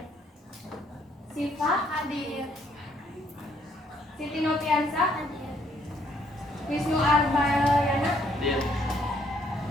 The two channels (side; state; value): both; normal; correlation 0.68